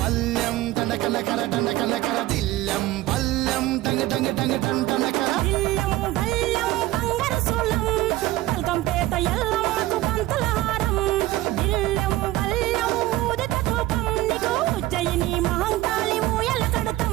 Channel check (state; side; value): quieter; left; 16.5 dB